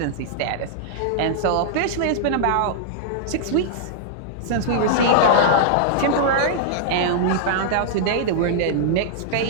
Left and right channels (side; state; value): both; different; correlation -0.01